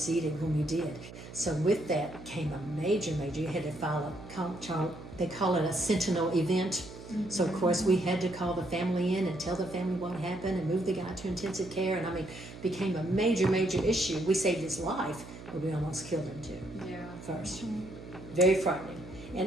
when we did. So with that came a major, you had to file they call it a sentinel event. Mm-hmm. So of course we had to call the family in and tell the family what happened and move the guy to intensive care. And became a major issue. We saved his life, but we almost killed him too. Yeah. First. Very frightening.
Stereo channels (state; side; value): noise; right; hum, 15 dB below the sound